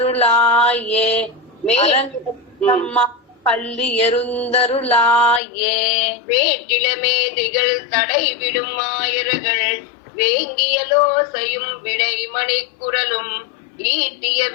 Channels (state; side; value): drops out; right; at 5.4 s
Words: அரங்கத்தம்மா பள்ளி எருந்தருளாயே வேட்டிலமேதிகள் தடைவிடும் ஆயர்கள் வேங்கியலோசையும் விடைமணிக்குரலும் ஈட்டிய